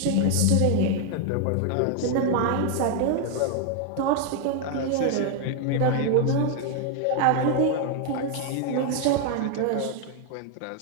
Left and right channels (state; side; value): different; both; correlation 0.00